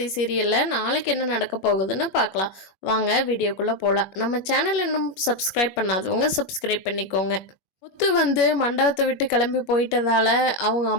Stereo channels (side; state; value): right; late; 21 ms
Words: சீரியலில் நாளைக்கு என்ன நடக்க போகுதுன்னு பார்க்கலாம். வாங்க வீடியோக்குள்ளே போகலாம். நம்ம சேனல் இன்னும் சப்ஸ்கிரைப் பண்ணாதவங்க சப்ஸ்கிரைப் பண்ணிக்கோங்க. முத்து மண்டபத்தை விட்டு கிளம்பி போயிட்டதால அவங்க